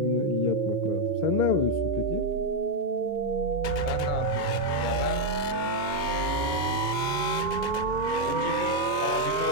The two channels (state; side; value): late; right; 2.2 ms